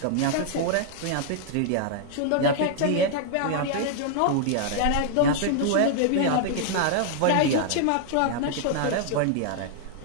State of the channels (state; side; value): different; both; correlation -0.01